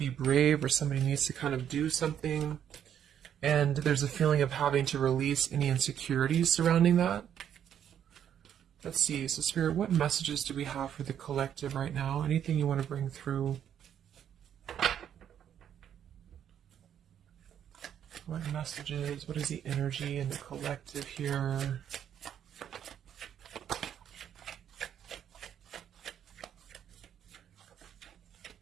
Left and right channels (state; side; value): quieter; left; 9.4 dB